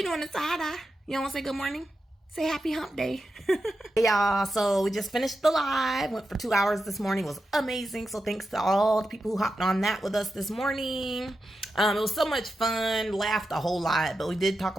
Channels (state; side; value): normal; both; correlation 0.89